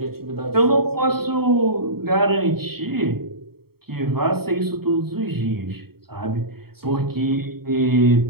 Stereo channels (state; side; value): late; left; 0.95 ms